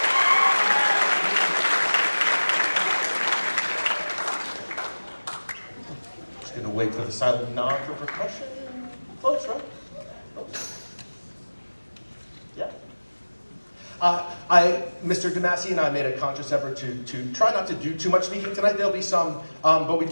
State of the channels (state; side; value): inverted; both; correlation -1.00